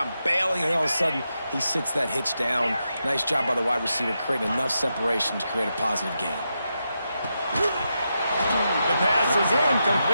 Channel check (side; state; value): both; inverted; correlation -0.86